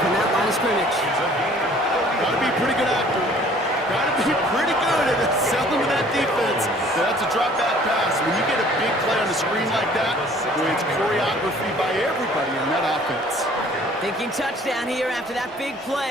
from that line of scrimmage. Gotta be pretty good actor. Gotta be pretty good at selling to that defense. That's a drop back pass. When you get a big play on the screen like that, boy, it's choreography by everybody on that offense. Thinking touchdown here after that big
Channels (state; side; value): normal; both; correlation 0.54